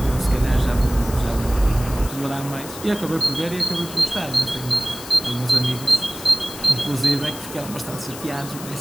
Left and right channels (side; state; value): left; noise; hiss, 13 dB below the sound